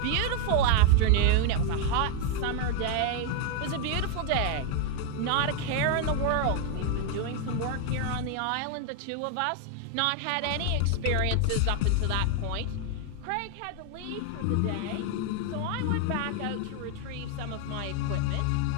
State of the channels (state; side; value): different; both; correlation 0.00